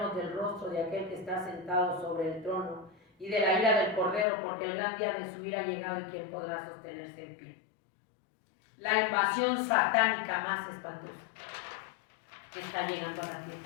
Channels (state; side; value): drops out; right; at 4.2 s